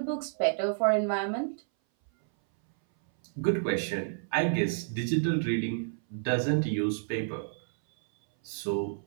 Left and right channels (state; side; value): silent; left; 58 dB below the other